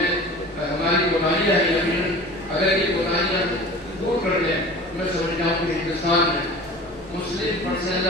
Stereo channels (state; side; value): normal; both; correlation 0.39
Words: ہماری کوتاہیاں ہیں. یقیناً اگر یہ کوتاہیاں دور کر لیں میں سمجھتا ہوں کہ ہندوستان میں مسلم پرسنل